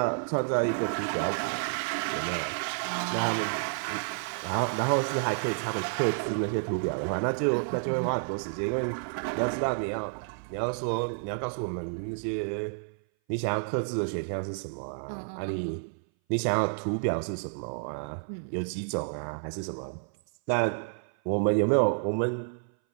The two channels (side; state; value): left; silent; 58 dB below the other